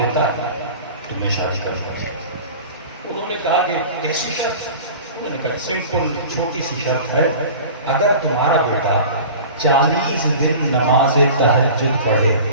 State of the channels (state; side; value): inverted; both; correlation -0.38